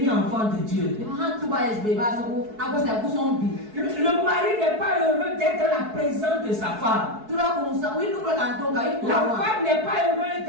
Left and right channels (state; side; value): late; left; 4.6 ms